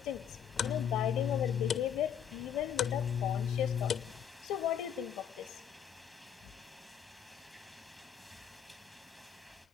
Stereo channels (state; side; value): quieter; right; 8.7 dB